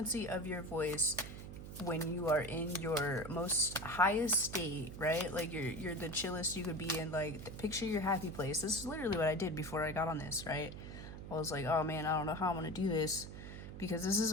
of your voice when you are in your most highest state, right? Like, you're the chillest you could be in. Like, picture your happy place. This is literally what I did before I got on this, right? I was like, oh man, I don't know how I'm gonna do this, because this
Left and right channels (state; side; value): noise; right; hum, 10 dB below the sound